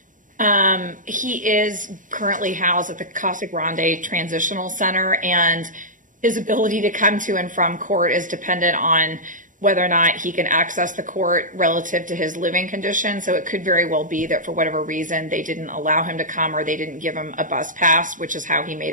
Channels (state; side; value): late; left; 0.38 ms